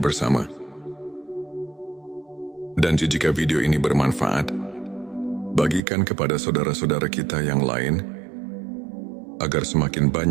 Dan jika video ini bermanfaat, bagikan kepada saudara-saudara kita yang lain, agar semakin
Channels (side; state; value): left; drops out; at 5.8 s